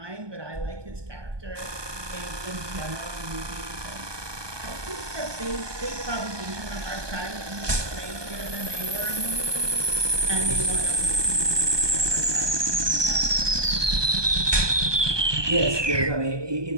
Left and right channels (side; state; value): left; late; 1.2 ms